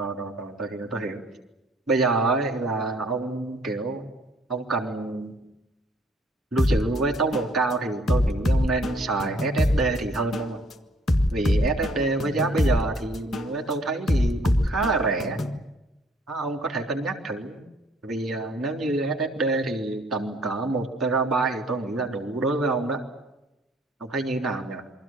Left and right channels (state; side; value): normal; both; correlation 0.61